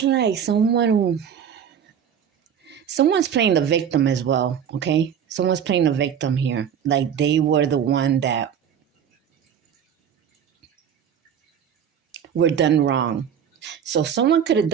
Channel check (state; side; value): quieter; left; 8.3 dB